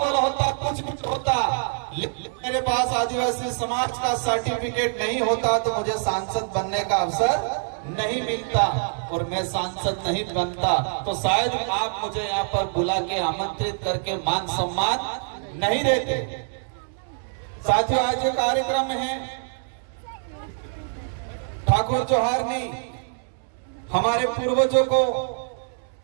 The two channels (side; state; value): left; silent; 62 dB below the other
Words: होता, कुछ होता, लेकिन मेरे पास आदिवासी समाज का सर्टिफिकेट नहीं होता तो मुझे सांसद बनने का अवसर नहीं मिलता, और मैं सांसद नहीं बनता तो शायद आप मुझे यहाँ पर बुला के आमंत्रित करके मान सम्मान नहीं देते। साथियों, आज ये कार्यक्रम है ठाकुर जोहारनी, हमारे पूर्वजों को,